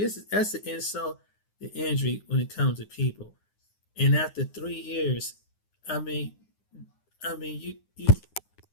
an insult to injury when it comes to people. And after 3 years, I mean, you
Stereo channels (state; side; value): late; right; 9.7 ms